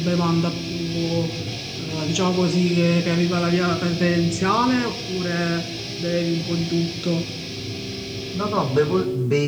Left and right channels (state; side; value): identical; both; correlation 1.00